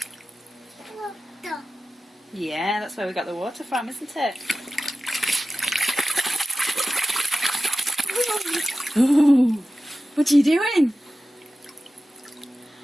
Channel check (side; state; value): both; normal; correlation 0.94